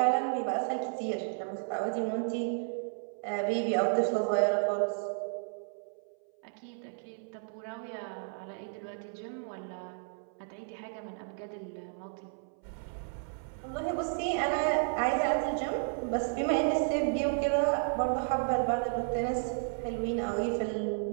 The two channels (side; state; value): left; silent; 56 dB below the other